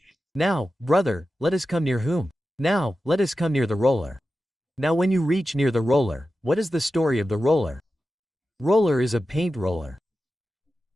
Now, brother, let us come near whom? Now, let us come near the roller. Now when you reach near the roller, what is the story of the roller? Roller is a paint roller.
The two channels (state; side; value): normal; both; correlation 0.93